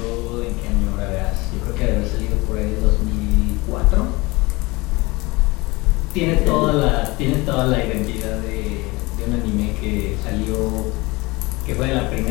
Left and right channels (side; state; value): right; quieter; 23.4 dB